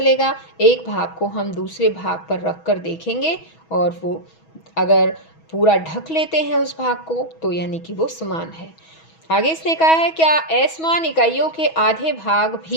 एक भाग को हम दूसरे भाग पर रख कर देखेंगे और वो अगर पूरा ढक लेते हैं उस भाग को तो यानी कि वो समान है। आगे इसने कहा है क्या असमान इकाइयों के आधे भाग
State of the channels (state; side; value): late; right; 6.2 ms